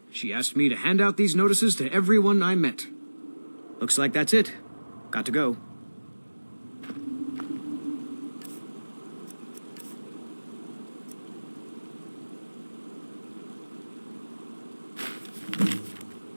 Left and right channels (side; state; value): both; inverted; correlation -1.00